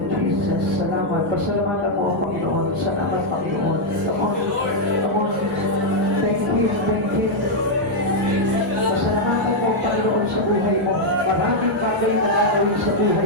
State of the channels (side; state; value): both; normal; correlation -0.02